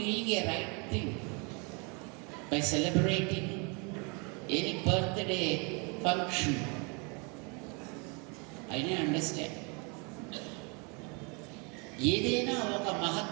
a right thing by celebrating any birthday function? I didn't understand. ఏదైనా ఒక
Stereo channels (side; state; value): left; quieter; 32.6 dB